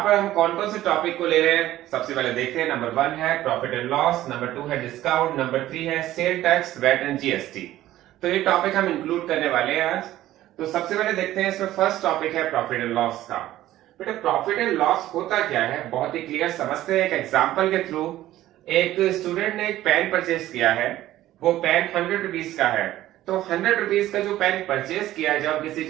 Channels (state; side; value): quieter; left; 14.4 dB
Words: पर हम कौन कौन से टॉपिक को ले रहे हैं, सबसे पहले देखते हैं। नंबर 1 है प्रॉफिट एंड लॉस, नंबर 2 है डिस्काउंट, नंबर 3 है sale tax, VAT and GST. तो ये टॉपिक हम इंक्लूड करने वाले हैं आज। तो सबसे पहले देखते हैं, इसमें फर्स्ट टॉपिक है प्रॉफिट एंड लॉस का। बेटा प्रॉफिट एंड लॉस होता क्या है, बहुत ही क्लियर समझते हैं एक एग्जांपल के थ्रू। एक स्टूडेंट ने एक पेन परचेज किया है, वो पेन 100 रुपीज का है। तो 100 रुपीज का जो पेन परचेज किया है, जब किसी